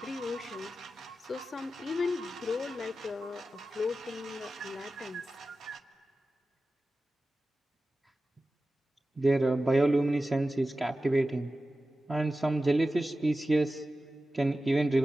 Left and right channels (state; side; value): normal; both; correlation 0.94